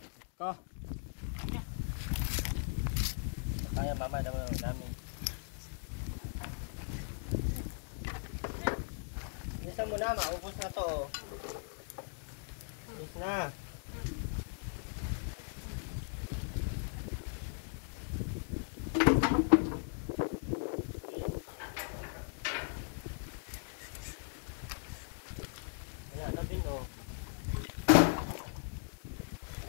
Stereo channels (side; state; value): right; silent; digital silence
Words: Ko. Kaya mama, dami. Bilisan mo na, maubos na to. Ubos na. Wala na din, oh.